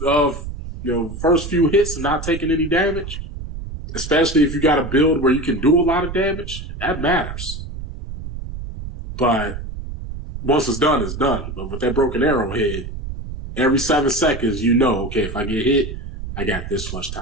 first few hits and not taking any damage, especially if you got a build where you can do a lot of damage, that matters. But once it's done, it's done. But with that broken arrowhead, every 7 seconds, okay, if I get hit, I got this much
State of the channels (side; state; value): right; noise; rumble, 9 dB below the sound